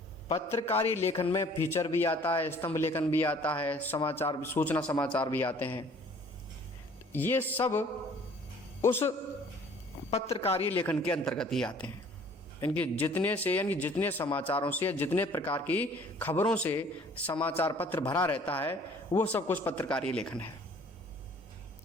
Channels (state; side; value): normal; both; correlation 0.54